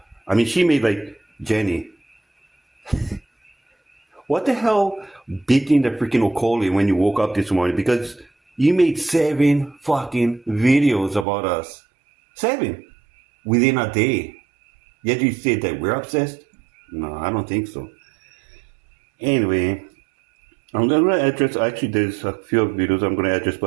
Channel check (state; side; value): drops out; left; at 11.2 s